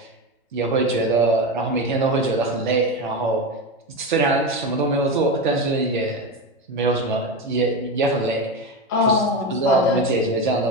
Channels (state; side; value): normal; both; correlation 0.18